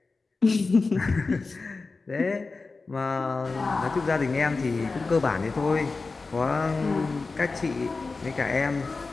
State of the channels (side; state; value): right; quieter; 3.9 dB